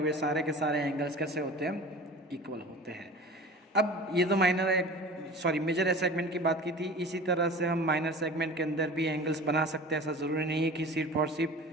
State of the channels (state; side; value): normal; both; correlation 0.39